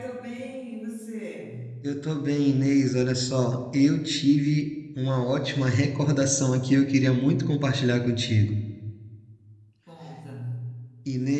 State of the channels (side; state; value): both; identical; correlation 1.00